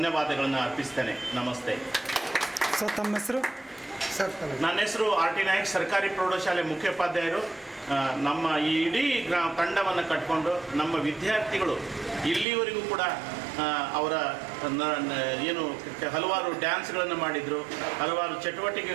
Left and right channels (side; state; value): left; drops out; at 12.5 s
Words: ಅರ್ಪಿಸ್ತೇನೆ. ನಮಸ್ತೆ ಸರ್. ತಮ್ಮ ಹೆಸರು? ನನ್ನ ಹೆಸರು RT ನಾಯಕ್, ಸರ್ಕಾರಿ ಪ್ರೌಢಶಾಲೆ ಮುಖ್ಯೋಪಾಧ್ಯಾಯರು. ನಮ್ಮ ಈ ಇಡೀ ತಂಡವನ್ನು ಕಟ್ಕೊಂಡು ನಮ್ಮ ವಿದ್ಯಾರ್ಥಿಗಳು ಇಲ್ಲಿವರೆಗೂ ಕೂಡ ಅವರ ಏನು ಹಲವಾರು ಡ್ಯಾನ್ಸ್ಗಳನ್ನು ಮಾಡಿದರು, ಹಲವಾರು